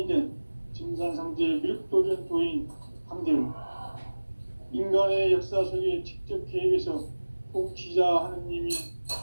된 증산상제 밀도전 도인 강대우, 인간의 역사 속에 직접 개입해서 통치자 하느님이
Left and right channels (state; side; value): inverted; both; correlation -1.00